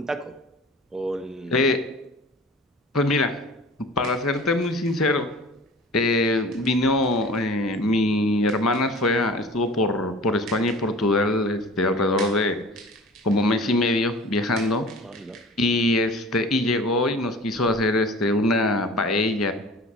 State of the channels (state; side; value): normal; both; correlation 0.42